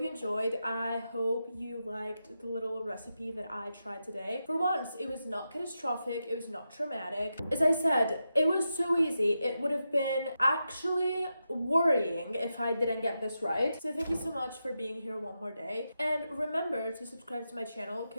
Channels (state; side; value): inverted; both; correlation -0.88